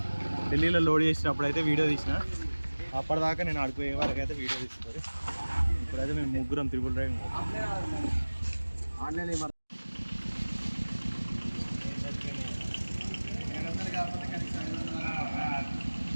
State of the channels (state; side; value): inverted; both; correlation -1.00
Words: ఢిల్లీలో లోడ్ చేసినప్పుడు అయితే వీడియో తీసిన. అప్పటిదాకా నేను ఆడిపోయే వాళ్ళకి అయితే వీడియో తీసుకోవాలి. ఇప్పుడైతే మేము ముగ్గురం త్రిబుల్ రైడింగ్ ఆన్లైన్